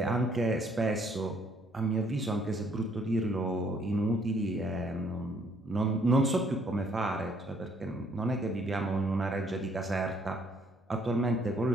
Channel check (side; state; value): both; normal; correlation 0.65